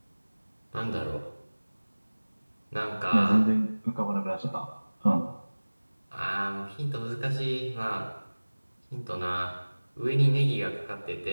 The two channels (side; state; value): both; inverted; correlation -1.00